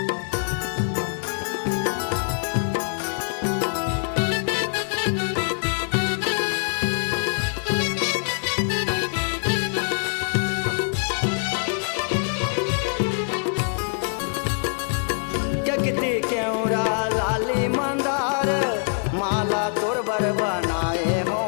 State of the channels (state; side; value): silent; right; digital silence